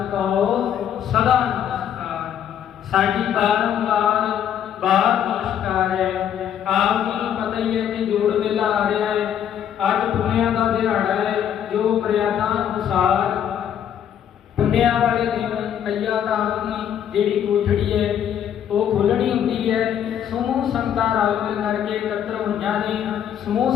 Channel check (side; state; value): right; quieter; 9.5 dB